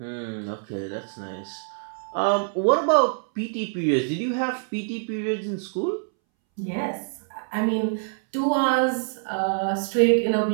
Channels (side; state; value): left; silent; 62 dB below the other